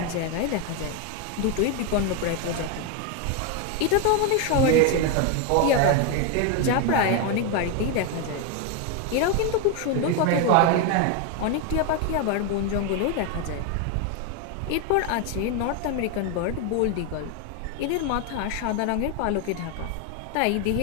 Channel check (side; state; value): both; different; correlation 0.02